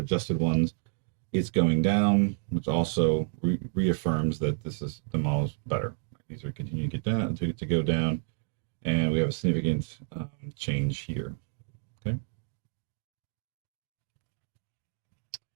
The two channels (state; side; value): silent; left; digital silence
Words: ones, it's going down, which also reaffirms that this is the model's better. Right? These are continuing to get down, to go down, and we have a significant change here. Okay.